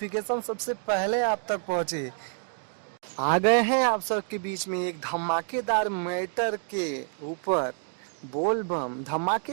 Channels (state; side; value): silent; left; 59 dB below the other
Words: सबसे पहले आप तक पहुंचे। आ गए हैं आप सबके बीच में एक धमाकेदार मैटर के ऊपर, बोल बम